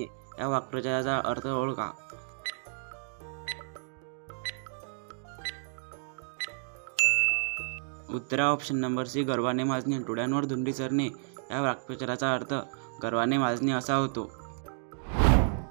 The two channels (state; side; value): silent; left; digital silence